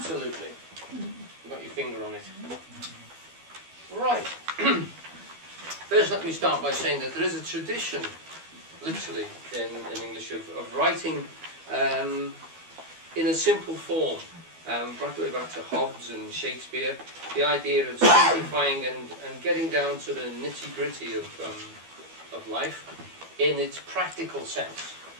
You've got your finger on it. Right. First, let me start by saying that there is a tradition, literally, in English, of writing in a simple form. Right the way back to Hobbes and Shakespeare, the idea of simplifying and getting down to the nitty-gritty of life in its practical sense.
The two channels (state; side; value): late; left; 13 ms